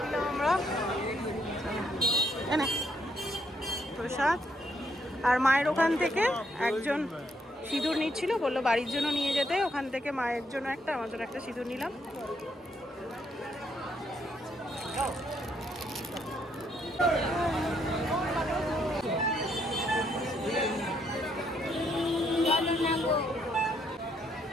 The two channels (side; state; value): both; normal; correlation 0.73